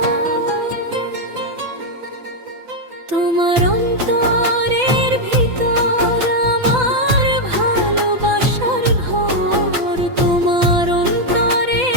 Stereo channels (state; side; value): late; left; 6.0 ms